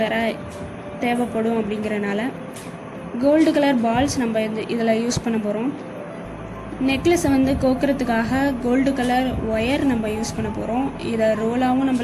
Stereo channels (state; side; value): identical; both; correlation 1.00